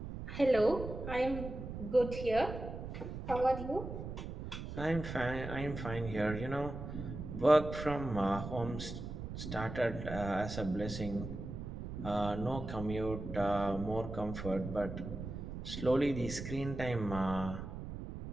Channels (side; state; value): right; noise; rumble, 7 dB below the sound